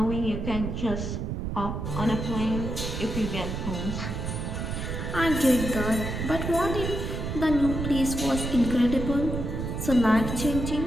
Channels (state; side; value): noise; right; rumble, 4 dB below the sound